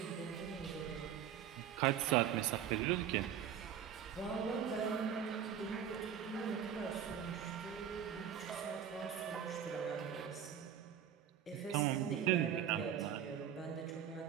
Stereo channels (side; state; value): left; quieter; 9.0 dB